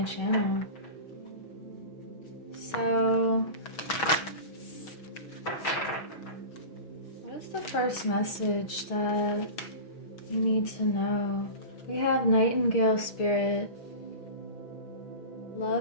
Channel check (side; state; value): right; late; 6.1 ms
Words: channel. So, what is the first message that you need to know? We have Nightingale Spirit.